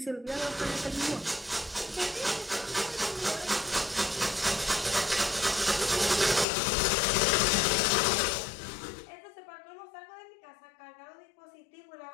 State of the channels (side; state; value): right; drops out; at 6.5 s